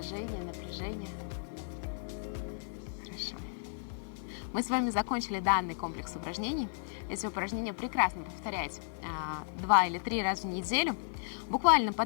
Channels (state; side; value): silent; right; 55 dB below the other